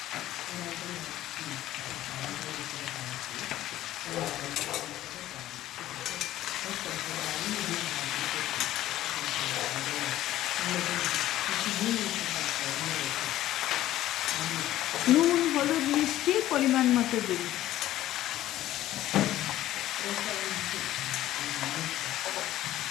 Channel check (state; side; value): quieter; right; 14.0 dB